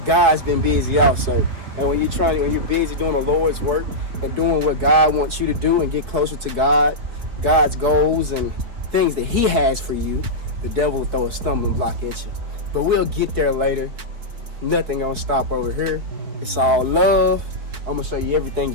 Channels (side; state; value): left; late; 4.4 ms